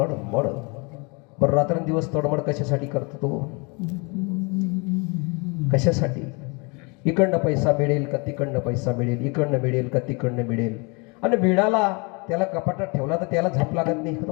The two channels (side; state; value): right; quieter; 30.9 dB